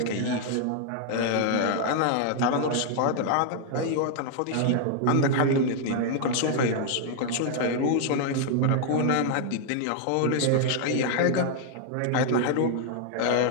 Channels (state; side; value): different; both; correlation 0.00